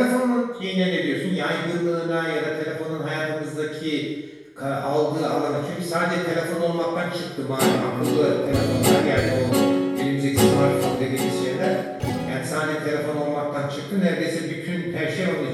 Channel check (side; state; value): both; identical; correlation 1.00